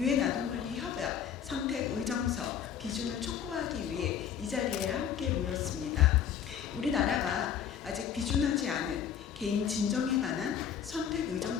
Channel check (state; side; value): quieter; right; 8.5 dB